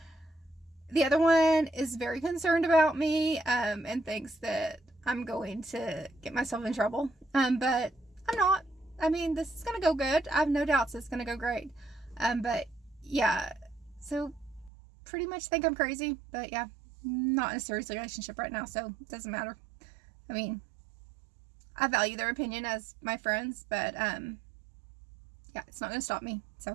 the other one is very concerned about me, and thinks that I'm going to get myself in trouble, but I'm not. I mean, this is going to go good. I have no doubts it's going to go great, but yeah, so pretty much think I'm crazy, but yeah. Not in a serious relationship right now, so it doesn't matter. I mean, I value their opinion as my friends, but yeah, it's not going to stop me.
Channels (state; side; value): drops out; left; at 14.7 s